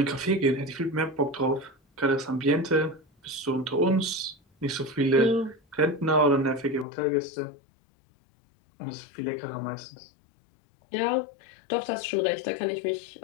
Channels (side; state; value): right; drops out; at 6.9 s